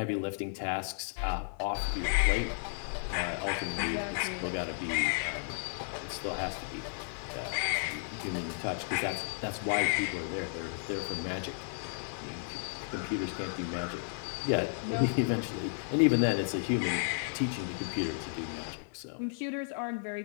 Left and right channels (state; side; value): silent; right; digital silence